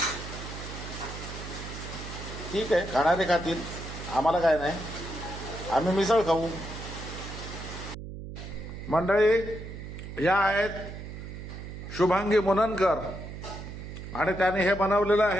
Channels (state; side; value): noise; right; hum, 10 dB below the sound